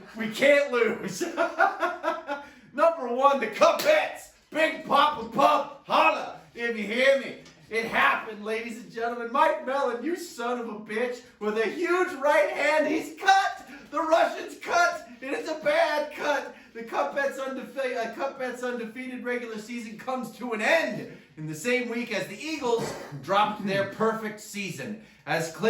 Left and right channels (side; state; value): both; identical; correlation 1.00